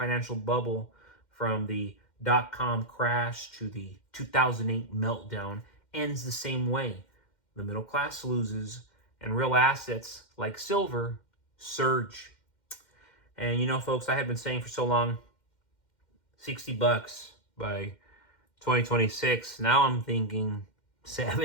bubble, from the dot-com crash to the 2008 meltdown, ends the same way. The middle class loses, and real assets like silver surge. And you know, folks, I have been saying for so long, $60 by 2026. Now I'm thinking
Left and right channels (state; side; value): late; right; 2.1 ms